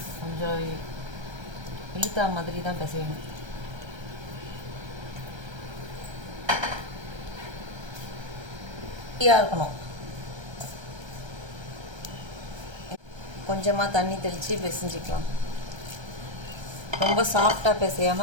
கொஞ்சம் இழுத்தா மாதிரி தான் பிசையணும். இருக்கணும். கொஞ்சமாக தண்ணி தெளித்து பிசைஞ்சிக்கலாம். ரொம்ப சாஃப்டாக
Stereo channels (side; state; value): left; late; 1.3 ms